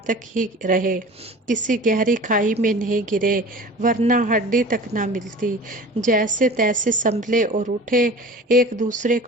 तक ही रहे, किसी गहरी खाई में नहीं गिरे, वरना हड्डी तक ना मिलती। जैसे तैसे संभले और उठे। एक दूसरे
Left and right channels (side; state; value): both; normal; correlation 0.40